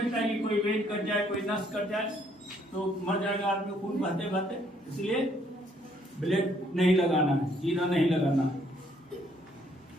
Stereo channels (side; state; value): both; normal; correlation 0.67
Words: है कि कोई वेट कट जाए, कोई नस कट जाए, तो मर जाएगा आदमी खून बहते बहते, इसलिए ब्लेड नहीं लगाना है, चीरा नहीं लगाना है।